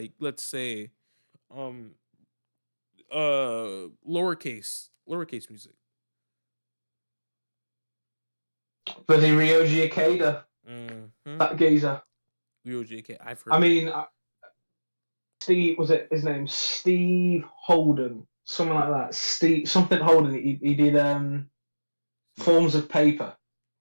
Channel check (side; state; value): both; inverted; correlation -1.00